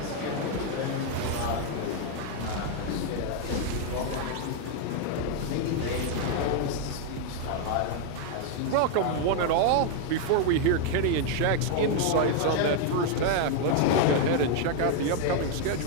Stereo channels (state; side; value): different; both; correlation 0.00